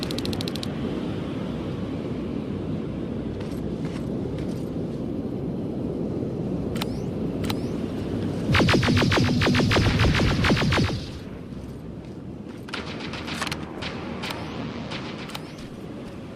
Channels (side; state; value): both; identical; correlation 1.00